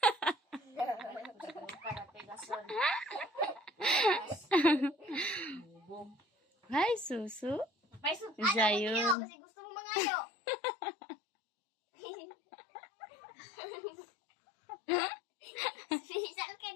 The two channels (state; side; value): drops out; right; at 9.2 s